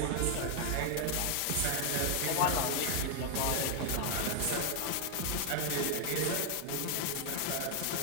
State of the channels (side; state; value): both; different; correlation 0.01